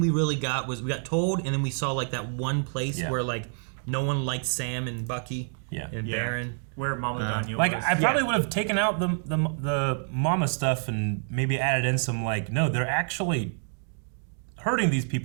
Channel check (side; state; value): left; silent; 60 dB below the other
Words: we really got was we got told, and then we saw like that one place where like no one liked Sam and Bucky and Baron. Where Mama Danya like was. I probably would have taken out the mama stuff and maybe added in some like, no, they're actually hurting these